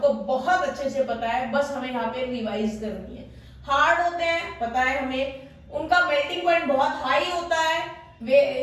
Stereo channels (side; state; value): both; identical; correlation 1.00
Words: बहुत अच्छे से पता है, बस हमें यहाँ पे रिवाइज करनी है। हार्ड होते हैं पता है हमें, उनका मेल्टिंग पॉइंट बहुत हाई होता है,